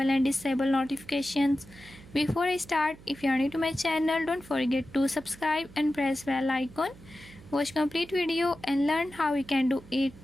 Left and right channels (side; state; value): right; noise; hum, 20 dB below the sound